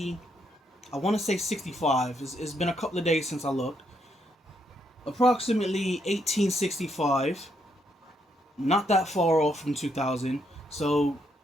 I want to say 65. It's been a couple of days since I looked. Approximately 1865. Not that far off from 2,000. So,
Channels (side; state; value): both; normal; correlation 0.75